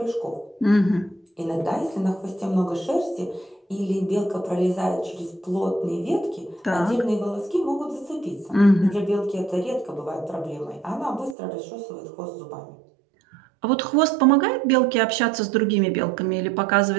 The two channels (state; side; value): drops out; left; at 11.4 s